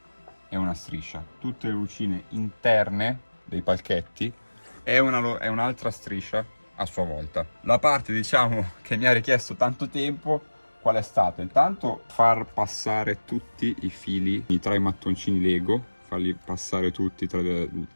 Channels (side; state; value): both; inverted; correlation -1.00